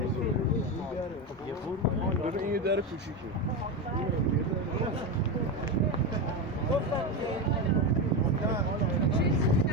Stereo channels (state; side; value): normal; both; correlation 0.15